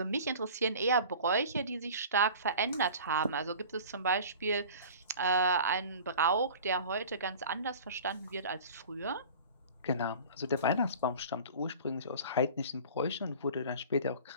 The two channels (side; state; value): both; inverted; correlation -0.41